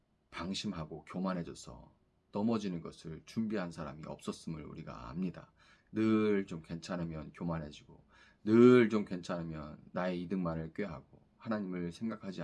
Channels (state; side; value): identical; both; correlation 1.00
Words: 방심하고 교만해져서 넘어지는 것을 준비한 사람이 없었음을 우리가 압니다. 늘 좀 괜찮으면 교만해지고 늘 좀 괜찮으면 나의 이득만을 꾀하고 하나님을 생각하지